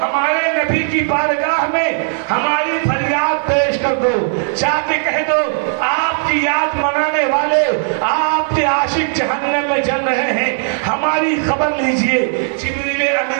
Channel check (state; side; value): silent; left; digital silence